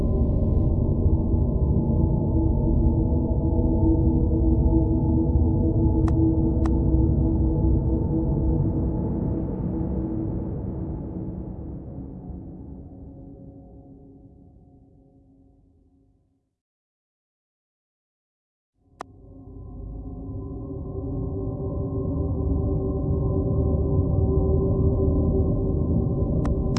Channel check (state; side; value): identical; both; correlation 1.00